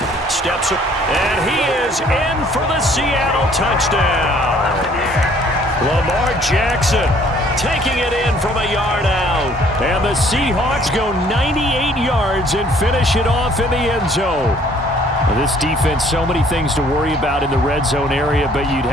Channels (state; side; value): normal; both; correlation 0.59